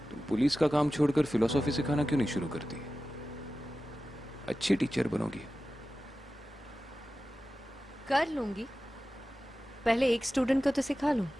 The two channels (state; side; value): normal; both; correlation 0.94